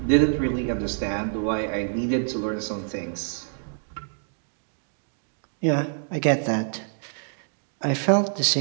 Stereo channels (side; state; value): left; silent; digital silence